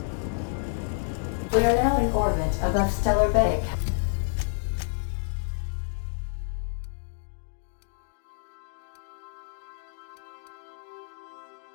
We are now in orbit above Stellar Bay.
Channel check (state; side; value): silent; right; digital silence